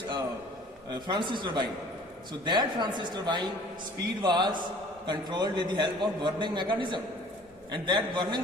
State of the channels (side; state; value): both; normal; correlation 0.50